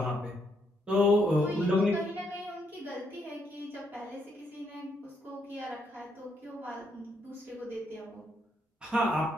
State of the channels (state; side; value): normal; both; correlation 0.75